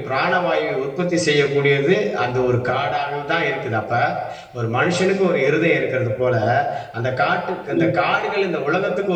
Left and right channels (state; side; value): identical; both; correlation 1.00